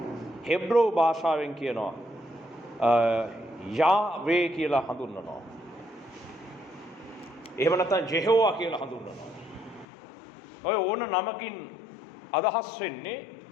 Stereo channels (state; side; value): drops out; right; at 9.9 s